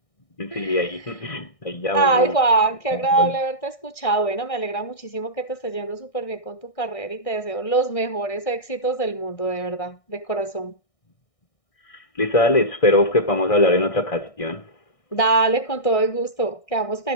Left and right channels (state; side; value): late; right; 1.6 ms